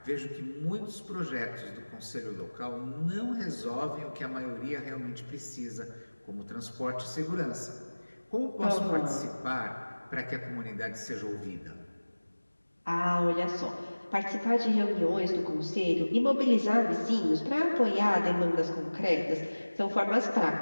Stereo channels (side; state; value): both; inverted; correlation -1.00